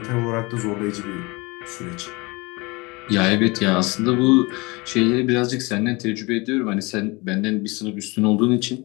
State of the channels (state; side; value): quieter; right; 25.2 dB